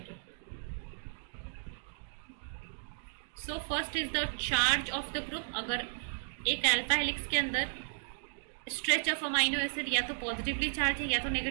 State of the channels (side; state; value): left; silent; digital silence